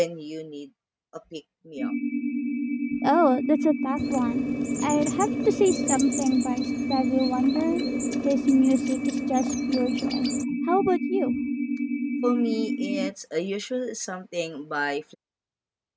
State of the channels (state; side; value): identical; both; correlation 1.00